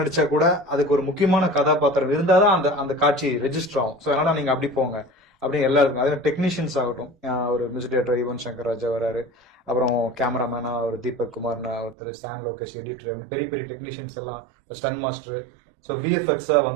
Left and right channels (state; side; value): drops out; left; at 12.0 s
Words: கூட அதுக்கு ஒரு முக்கியமான கதாபாத்திரம் இருந்தாதான் அந்த அந்த காட்சி ரெஜிஸ்டர் ஆகும். ஸோ அதனால நீங்க அப்படி போங்க அப்படின்னு எல்லாருக்கும். அதே டெக்னீஷியன்ஸ் ஆகட்டும், ஒரு மியூசிக் டைரக்டர் யுவன் சங்கர் ராஜா வராரு, அப்புறம் கேமராமேனா ஒரு தீபக் குமார்னு ஒருத்தர், சான் லோகேஷ் எடிட்டர், பெரிய பெரிய டெக்னீஷியன்ஸ் எல்லாம், ஸ்டன் மாஸ்டர். ஸோ விஎஃப்எக்ஸா